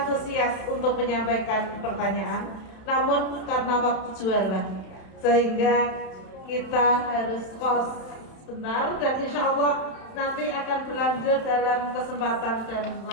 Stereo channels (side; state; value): right; late; 31 ms